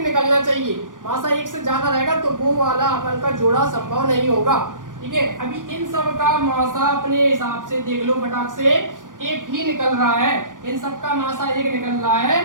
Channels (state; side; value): late; left; 0.88 ms